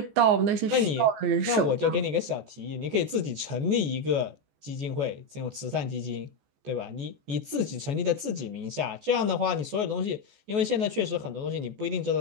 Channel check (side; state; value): left; late; 14 ms